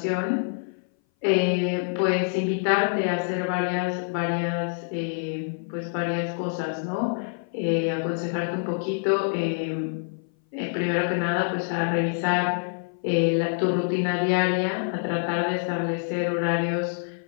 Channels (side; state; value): right; silent; 58 dB below the other